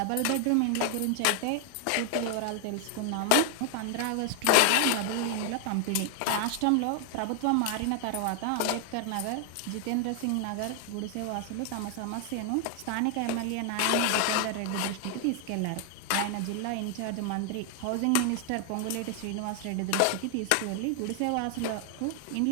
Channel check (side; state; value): both; different; correlation 0.00